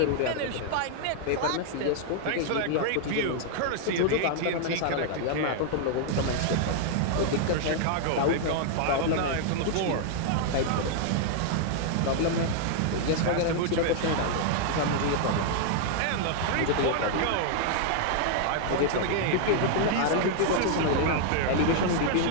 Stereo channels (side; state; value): both; different; correlation -0.01